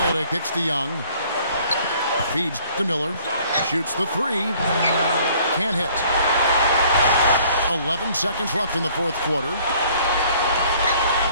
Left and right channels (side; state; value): both; inverted; correlation -0.57